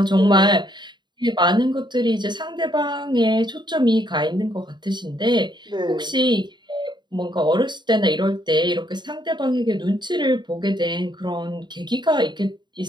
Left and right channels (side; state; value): left; late; 0.22 ms